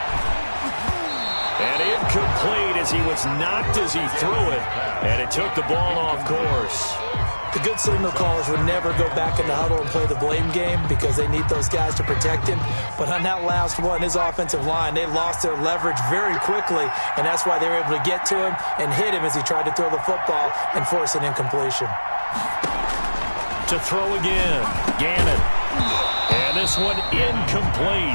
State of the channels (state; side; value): inverted; both; correlation -1.00